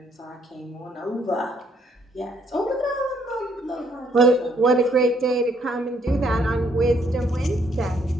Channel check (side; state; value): both; normal; correlation 0.68